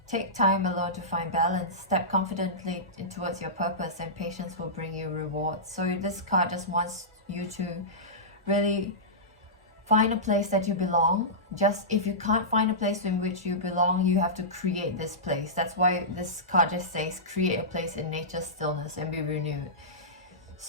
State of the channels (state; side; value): normal; both; correlation -0.17